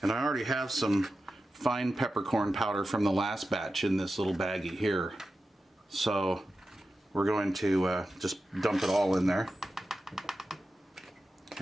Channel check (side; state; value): both; normal; correlation 0.92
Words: And I already have some fine peppercorn powder from the last batch in this little baggie here. So we're going to just dump it all in there.